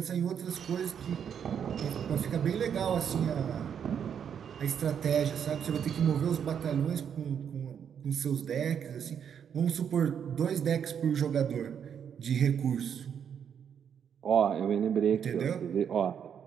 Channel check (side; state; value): left; quieter; 8.0 dB